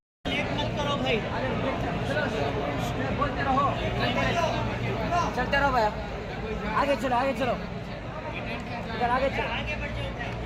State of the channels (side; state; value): both; identical; correlation 1.00